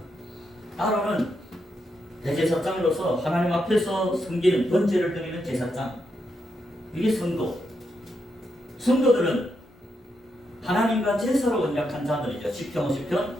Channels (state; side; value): normal; both; correlation 0.82